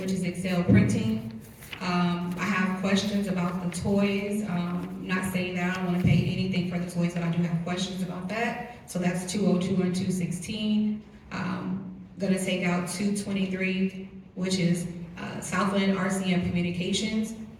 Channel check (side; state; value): both; identical; correlation 1.00